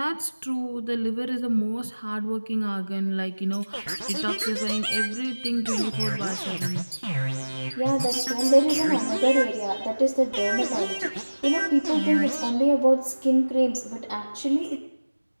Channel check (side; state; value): both; inverted; correlation -1.00